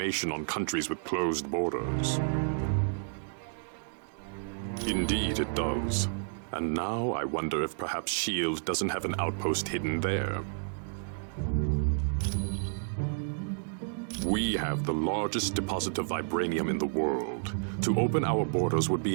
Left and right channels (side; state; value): left; silent; digital silence